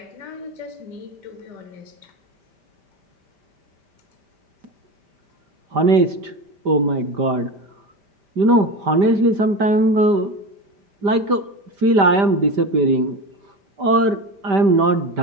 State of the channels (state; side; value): late; left; 5.1 ms